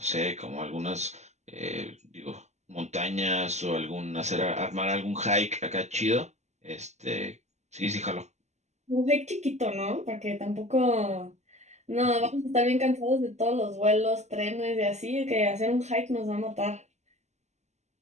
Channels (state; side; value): late; left; 0.33 ms